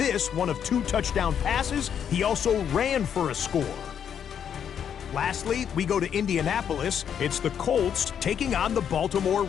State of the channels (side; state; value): right; quieter; 8.4 dB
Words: one of 2 touchdown passes. He also ran for a score. Lastly, we go to Indianapolis. It's the Colts taking on the Baltimore